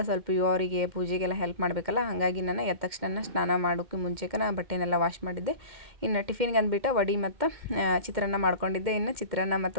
ಸ್ವಲ್ಪ ಇವರಿಗೆ ಪೂಜೆಗೆಲ್ಲ ಹೆಲ್ಪ್ ಮಾಡಬೇಕಲ್ಲ. ಹಾಗಾಗಿ ನಾನು ಎದ್ದ ತಕ್ಷಣ ಸ್ನಾನ ಮಾಡೋಕ್ಕೂ ಮುಂಚೆಗೆ ನಾನು ಬಟ್ಟೆನೆಲ್ಲ ವಾಶ್ ಮಾಡಿದ್ದೆ. ಇನ್ನು ಟಿಫಿನ್ಗೆ ಅಂದ್ಬಿಟ್ಟು ವಡೆ ಮತ್ತು ಚಿತ್ರಾನ್ನ ಮಾಡ್ಕೊಂಡಿದ್ದೆ. ಇನ್ನು ಚಿತ್ರಾನ್ನ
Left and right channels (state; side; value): late; left; 2.1 ms